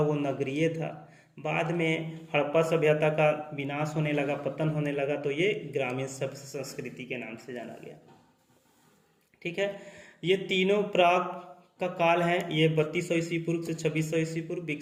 वो नगरीय था। बाद में हड़प्पा सभ्यता का विनाश होने लगा, पतन होने लगा, तो ये ग्रामीण संस्कृति के नाम से जाना गया, ठीक है। ये तीनों प्राक का काल है ये 3200 ईस्वी पूर्व से 2600 ईस्वी पूर्व,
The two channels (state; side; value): identical; both; correlation 1.00